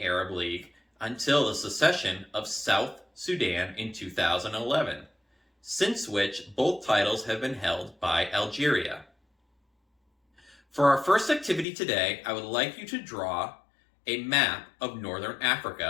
Arab League until the secession of South Sudan in 2011, since which both titles have been held by Algeria. For our first activity today, I would like you to draw a map of Northern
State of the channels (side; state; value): right; drops out; at 11.7 s